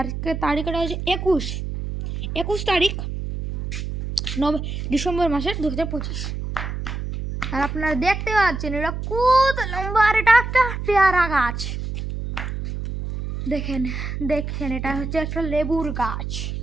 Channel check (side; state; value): right; noise; hum, 5 dB below the sound